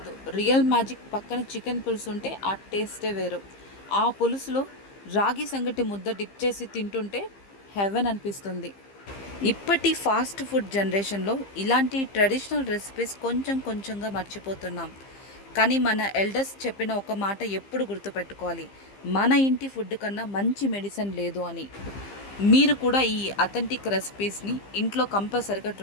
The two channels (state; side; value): late; right; 15 ms